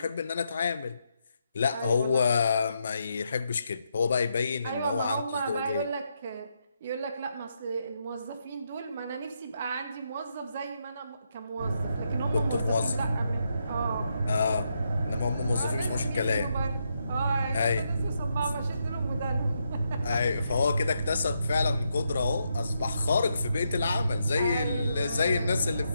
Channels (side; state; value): both; inverted; correlation -0.81